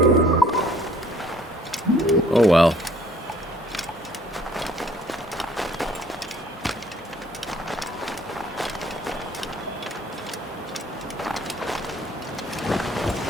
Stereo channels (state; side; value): normal; both; correlation 0.58